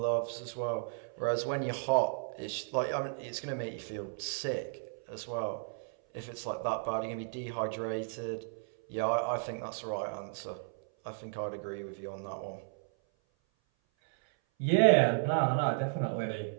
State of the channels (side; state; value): left; silent; 55 dB below the other